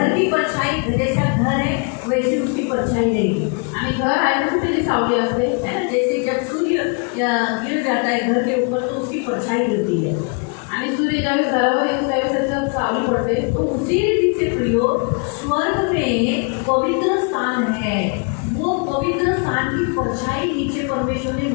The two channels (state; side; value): quieter; right; 35.8 dB